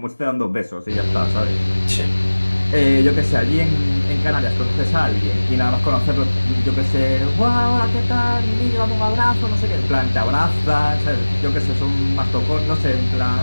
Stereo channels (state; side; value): inverted; both; correlation -1.00